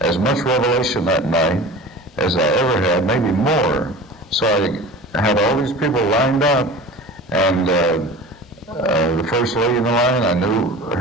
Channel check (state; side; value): normal; both; correlation 0.37